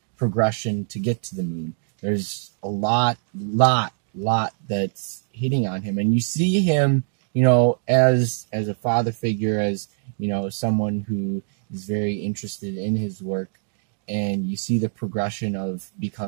progression to get to the moon. There's a lot that's hitting on him, and you see him as a father figure, as someone who is very interested in his work, and you see the progression of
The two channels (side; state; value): left; silent; digital silence